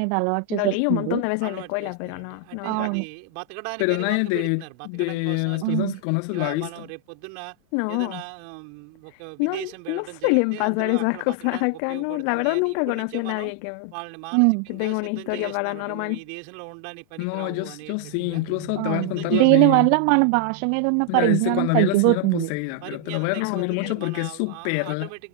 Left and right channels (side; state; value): both; different; correlation 0.00